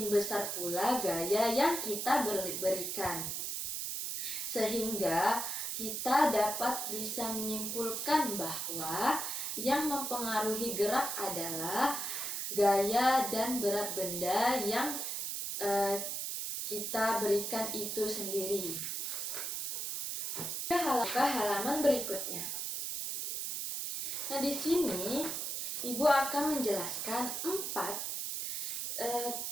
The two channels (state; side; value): noise; right; hiss, 3 dB below the sound